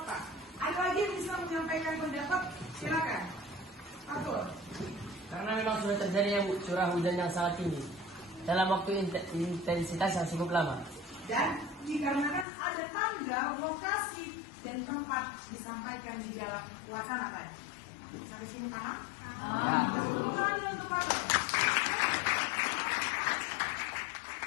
Ada lagi yang bisa menyampaikan pendapat? Silakan. Atur. Karena memang sudah terjadi curah hujan yang sangat tinggi dalam waktu intensitas yang cukup lama. Dan dikarenakan ada tanggal, lokasi, dan tempat disampaikan di dalam wacana tadi. Sampai sini paham? Paham. Untuk apa?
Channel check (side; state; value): right; drops out; at 12.5 s